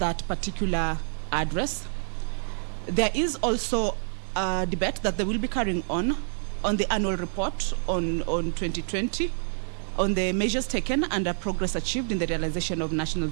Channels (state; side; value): silent; left; digital silence